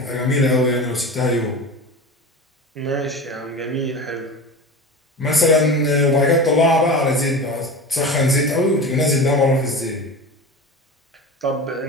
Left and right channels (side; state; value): both; normal; correlation 0.30